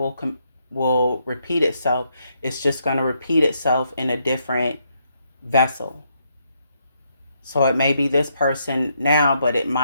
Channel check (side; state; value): both; inverted; correlation -0.76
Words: repeat itself. It's just going to repeat itself in a different vessel. So it may be this person now, but it